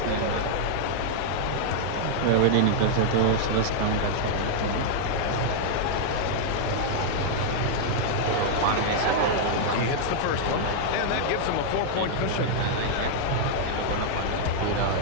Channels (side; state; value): both; different; correlation -0.01